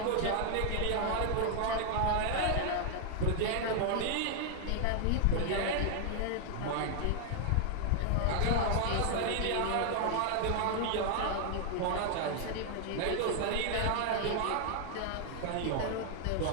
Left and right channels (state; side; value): different; both; correlation 0.00